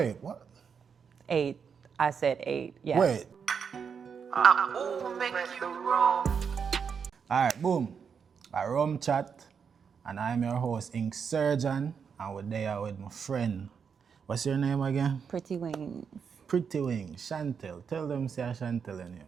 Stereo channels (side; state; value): left; quieter; 6.5 dB